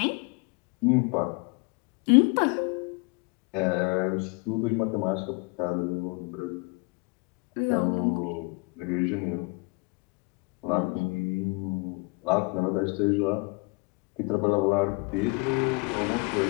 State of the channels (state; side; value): quieter; right; 28.6 dB